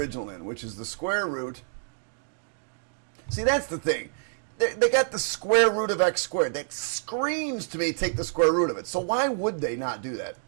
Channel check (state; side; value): silent; left; digital silence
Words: in, which is the square root. See, that's the thing. They got the square root of x squared. That screams to me, take the square root of it. So why would they not do that?